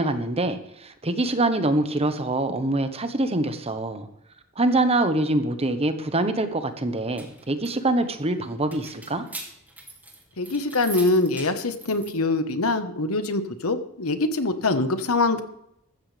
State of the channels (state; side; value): normal; both; correlation 0.28